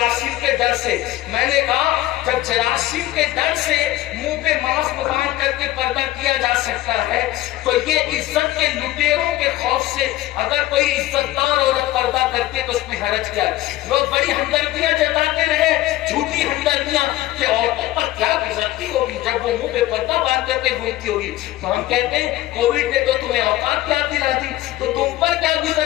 کے ڈر سے. میں نے کہا جب جراثیم کے ڈر سے منہ پہ ماسک باندھ کر کے پردہ کیا جا سکتا ہے تو یہ عزت کے لٹیروں کے خوف سے اگر کوئی عزت دار عورت پردہ کرتی ہے تو اس میں حرج کیا ہے؟ لوگ بڑی ہمدردیاں جتاتے رہے جھوٹی ہمدردیاں کہ عورتوں پر کیا گزرتی ہوگی جب وہ منہ پہ پردہ باندھ کر کے گھومتی ہوگی. تو ہم کہتے ہیں کووڈ نے تو تمہیں اوقات یاد دلا دی تو تم پر کیا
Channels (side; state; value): right; quieter; 15.9 dB